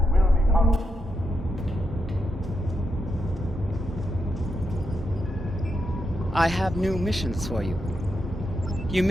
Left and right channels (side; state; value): both; normal; correlation 0.84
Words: I have new missions for you. You